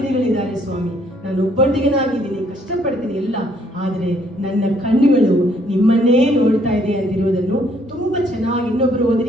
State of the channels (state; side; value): normal; both; correlation 0.66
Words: ಸ್ವಾಮಿ, ನಾನು ಒಬ್ಬಂಟಿಗನಾಗಿದ್ದೀನಿ, ಕಷ್ಟಪಡ್ತೀನಿ ಎಲ್ಲ, ಆದರೆ ನನ್ನ ಕಣ್ಣುಗಳು ನಿಮ್ಮನ್ನೇ ನೋಡ್ತಾ ಇದೆ ಅಂತಿರುವುದನ್ನು ತುಂಬಾ ಚೆನ್ನಾಗಿ ಇನ್ನೊಬ್ರು